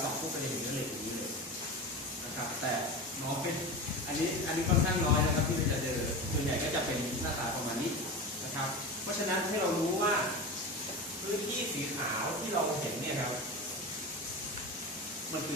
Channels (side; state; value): both; normal; correlation 0.26